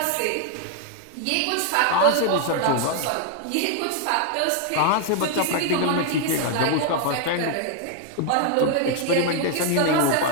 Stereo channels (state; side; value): different; both; correlation 0.00